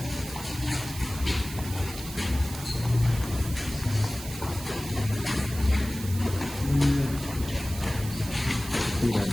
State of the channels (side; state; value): right; noise; hiss, 12 dB below the sound